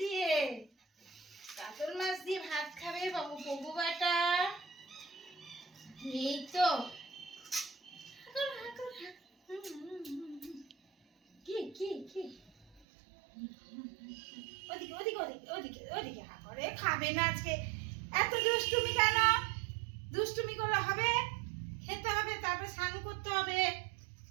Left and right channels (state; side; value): drops out; left; at 12.8 s